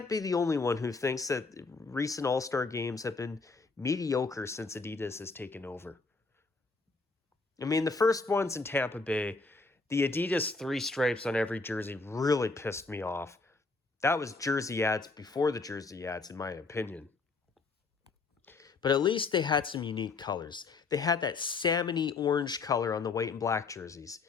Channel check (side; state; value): right; quieter; 4.0 dB